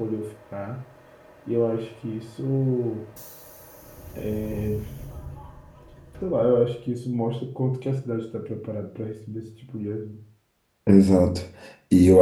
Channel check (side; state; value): both; identical; correlation 1.00